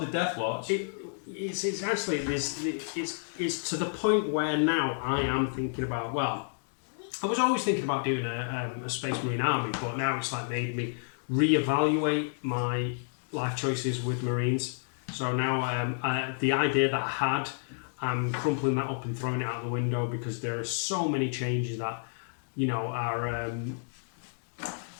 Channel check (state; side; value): silent; right; digital silence